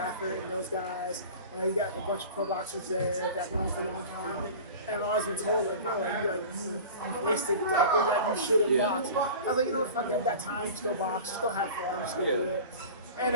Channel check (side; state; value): both; inverted; correlation -0.37